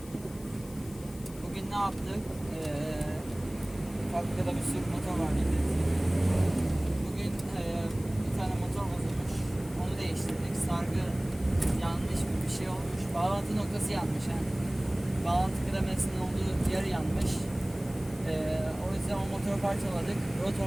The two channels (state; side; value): noise; left; hiss, 20 dB below the sound